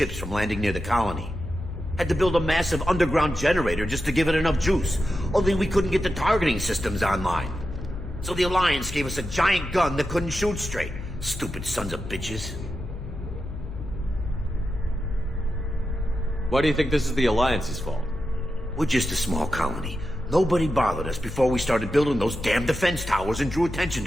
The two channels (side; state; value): left; noise; hum, 10 dB below the sound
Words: from landing near the colony. Had to build a massive underground generator just to give it enough juice. Only we couldn't get the targeting systems online. So the Alliance gave us a giant gun that couldn't shoot straight. Stupid sons of bitches. Why do you think this is the Alliance's fault? We're just a small colony. Nobody bothered us before we started building those damn defense towers and drew attention